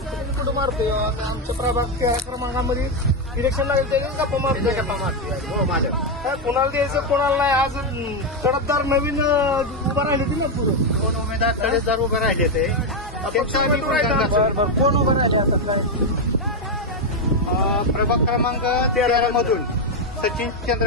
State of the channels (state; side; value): normal; both; correlation 0.04